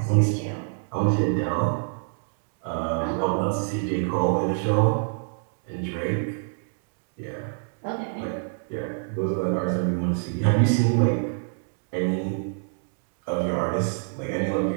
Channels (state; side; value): silent; left; digital silence